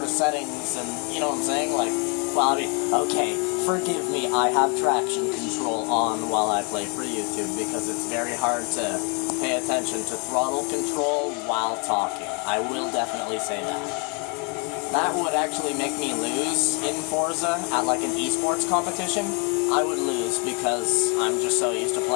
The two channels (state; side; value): quieter; right; 35.7 dB